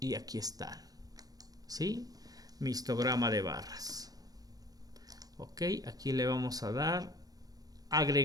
aquí están. ¿Sí? Mi histograma de barras. Ok, aquí le vamos a dar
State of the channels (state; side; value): late; left; 0.18 ms